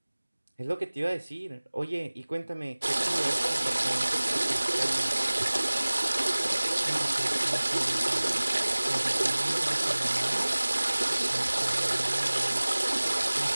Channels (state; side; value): inverted; both; correlation -1.00